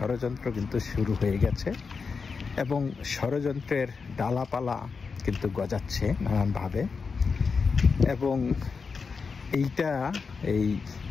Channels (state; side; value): quieter; right; 5.1 dB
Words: কিন্তু শুরু হয়ে গেছে এবং ষড়যন্ত্রের ডালাপালা কিন্তু গজাচ্ছে নানানভাবে। এবং এইটা এই